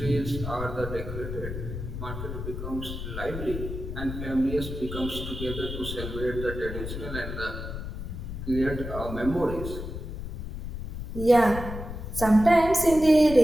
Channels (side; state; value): left; noise; rumble, 7 dB below the sound